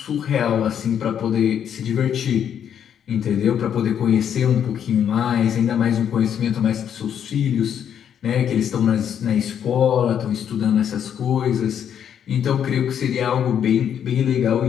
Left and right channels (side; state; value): right; quieter; 8.9 dB